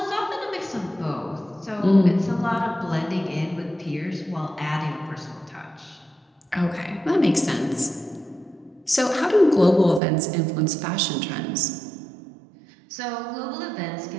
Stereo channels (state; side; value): drops out; left; at 10.0 s